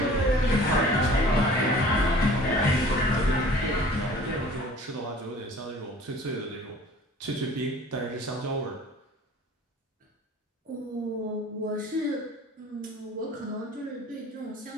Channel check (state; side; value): normal; both; correlation 0.47